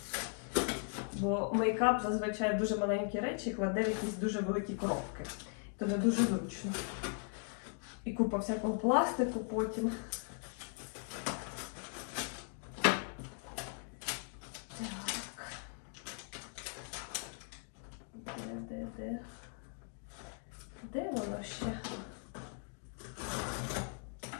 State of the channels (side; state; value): right; silent; 52 dB below the other